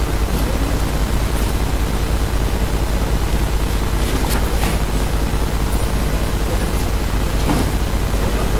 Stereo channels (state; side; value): identical; both; correlation 1.00